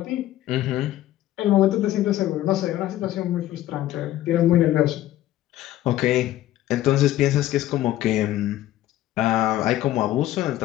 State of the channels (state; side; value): quieter; right; 14.1 dB